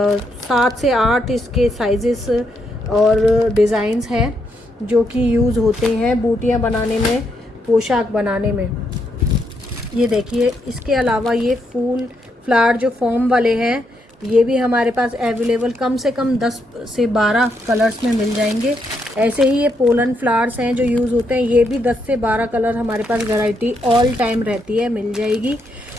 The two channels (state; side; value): normal; both; correlation 0.78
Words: से 8 इसके साइजेस और डिज़ाइंस हैं जो कि यूज़ होते हैं बूटियाँ बनाने में, पोशाक बनाने में। ये देखिए, इसके अलावा ये फूल फ्लावर जो फॉर्म वाले हैं ये भी हमारे पास अवेलेबल कम से कम 10 से 12 कलर्स में मिल जाएंगे। ऐसे ही ये पोलन फ्लावर्स हैं जो यूज़ होते हैं, ये भी 10 से 12 कलर हमारे पास वैरायटी ऑल टाइम रहती है, मिल जाएगी।